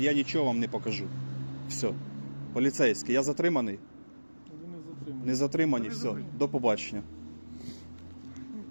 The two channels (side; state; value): both; inverted; correlation -1.00